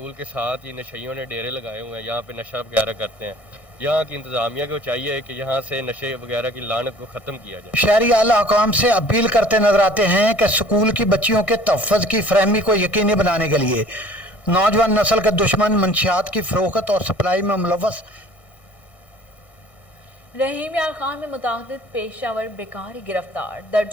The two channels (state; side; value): late; right; 1.6 ms